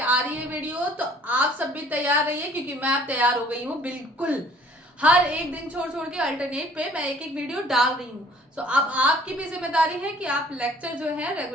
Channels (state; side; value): normal; both; correlation 0.55